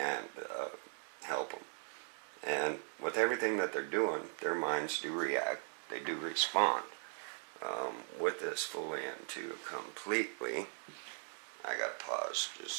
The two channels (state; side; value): silent; left; 52 dB below the other